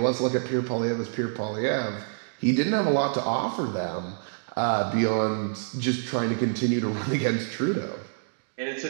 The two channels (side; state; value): left; silent; digital silence